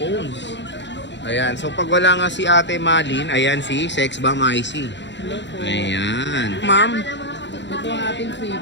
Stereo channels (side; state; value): right; late; 0.52 ms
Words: Ayan, so pag wala nga si Ate Malin, ayan si Sexbomb IC. Hello po. Ayan. Ma'am, Ito ang ating